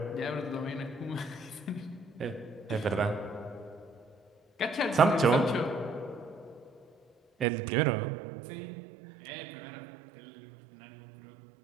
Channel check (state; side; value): drops out; left; at 7.5 s